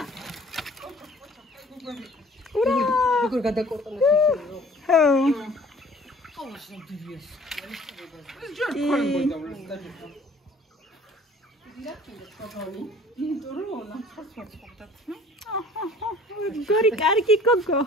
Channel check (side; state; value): both; normal; correlation 0.52